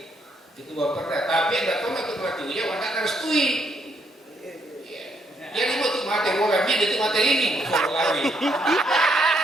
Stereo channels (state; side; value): normal; both; correlation 0.74